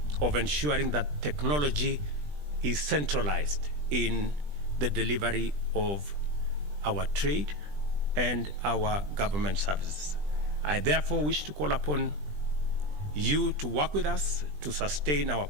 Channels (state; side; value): late; left; 20 ms